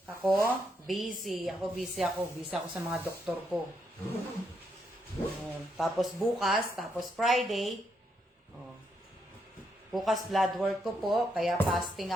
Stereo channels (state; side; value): normal; both; correlation 0.78